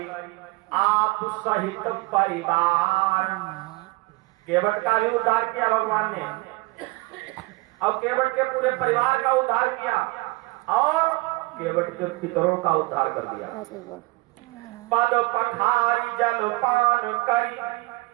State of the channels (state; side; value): quieter; left; 23.7 dB